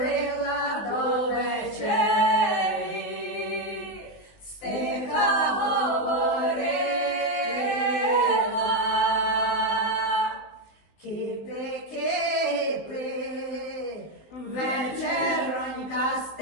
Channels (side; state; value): right; late; 19 ms